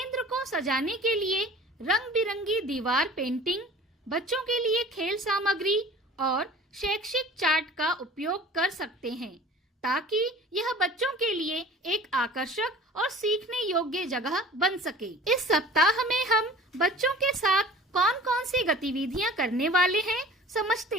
को सजाने के लिए रंग बिरंगी दीवार पेंटिंग, बच्चों के लिए खेल सामग्री और शैक्षिक चार्ट का उपयोग कर सकते हैं ताकि यह बच्चों के लिए एक आकर्षक और सीखने योग्य जगह बन सके। इस सप्ताह में हम बच्चों के साथ कौन-कौन सी गतिविधियां करने वाले हैं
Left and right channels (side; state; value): both; normal; correlation 0.43